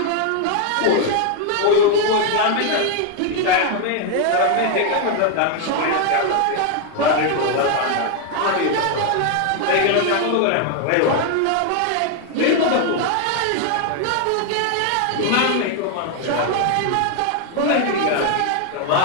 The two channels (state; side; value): different; both; correlation 0.01